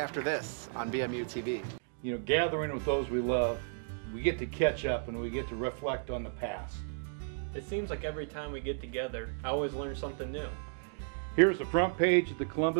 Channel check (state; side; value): silent; left; digital silence